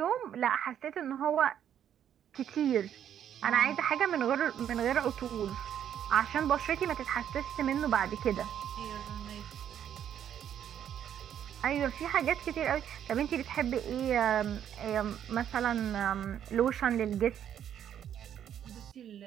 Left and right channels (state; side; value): quieter; left; 9.7 dB